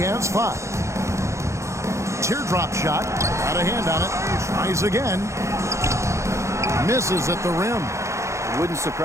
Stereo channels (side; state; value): left; late; 0.14 ms